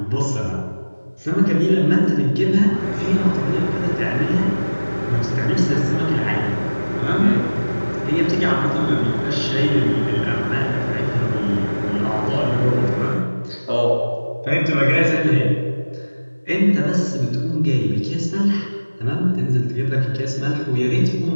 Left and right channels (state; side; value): inverted; both; correlation -1.00